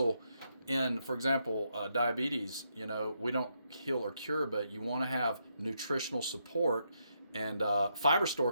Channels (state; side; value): inverted; both; correlation -0.79